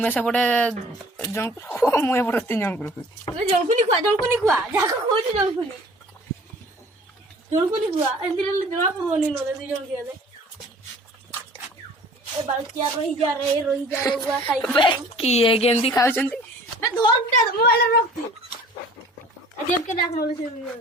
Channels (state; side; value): normal; both; correlation 0.49